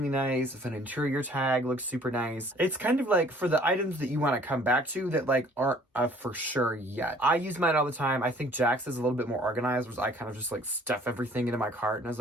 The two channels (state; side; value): normal; both; correlation 0.56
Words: nice, if an interior tag looks super nice. It's kind of like for the items that you want to come back to that like aren't for sure yet. I use mine all the time. I think Jax is a little bit more organized, whereas I kind of just like stuff everything into my cart. And as